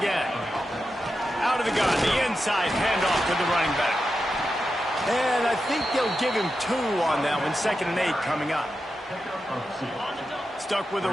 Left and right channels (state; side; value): normal; both; correlation 0.89